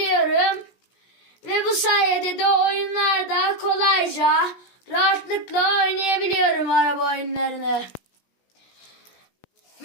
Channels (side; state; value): right; late; 17 ms